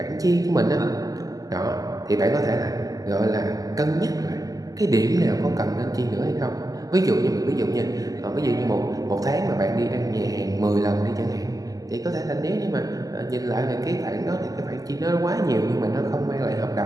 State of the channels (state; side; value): late; left; 0.17 ms